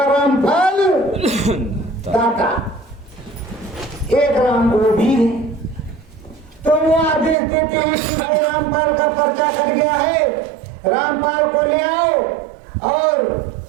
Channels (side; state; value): left; drops out; at 7.4 s